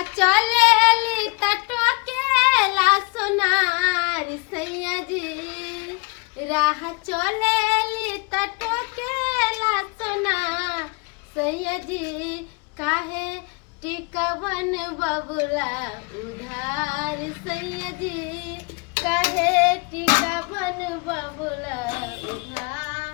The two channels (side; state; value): right; quieter; 29.9 dB